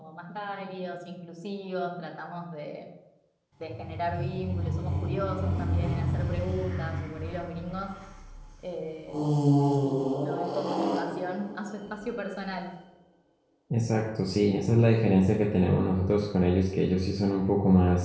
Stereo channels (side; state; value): both; identical; correlation 1.00